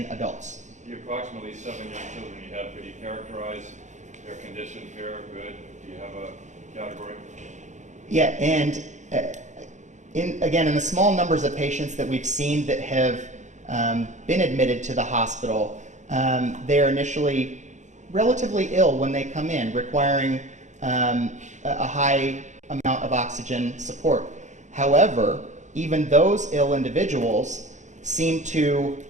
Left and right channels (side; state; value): left; late; 0.35 ms